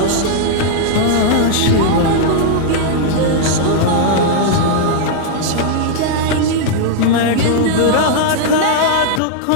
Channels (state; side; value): different; both; correlation -0.01